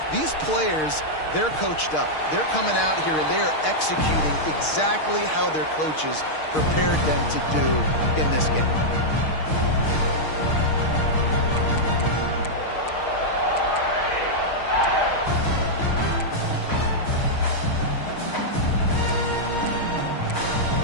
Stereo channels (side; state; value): right; late; 6.5 ms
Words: These players, they're coached up. They're coming out here, and they are executing exactly how their coaches prepared them to do in this game.